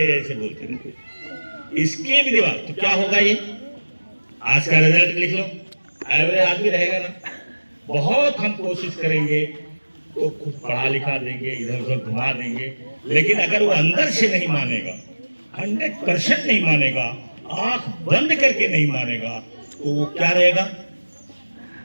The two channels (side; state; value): both; inverted; correlation -1.00